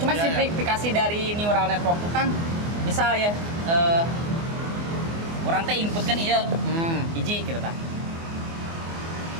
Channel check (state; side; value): late; left; 24 ms